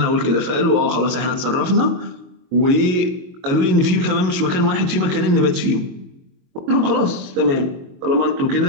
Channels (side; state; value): left; late; 22 ms